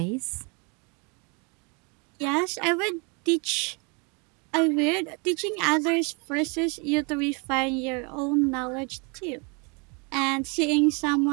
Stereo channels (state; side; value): quieter; left; 32.4 dB